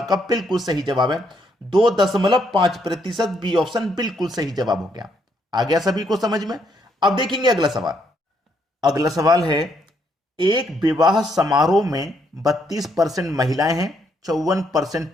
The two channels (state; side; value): normal; both; correlation 0.73